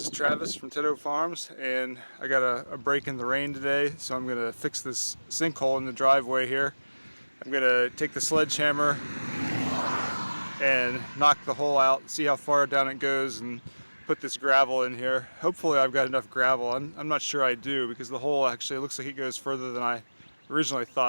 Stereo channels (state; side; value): inverted; both; correlation -1.00